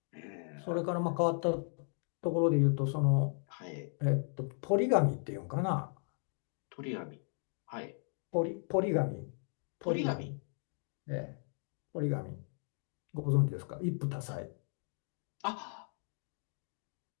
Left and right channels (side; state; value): right; silent; 54 dB below the other